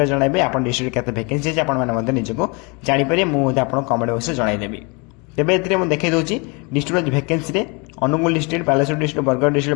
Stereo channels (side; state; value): right; quieter; 30.4 dB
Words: जनइबे आप डिस्ट्रिक्ट केते वैकेंसी अच्छी आपको निजको जापर मुझे आप कमेंट बॉक्स जनईदेवी। तेबे एथिरे मु देखै दोची डिस्ट्रिक्ट वैकेंसी रे Angul district Baleshwar district Bargarh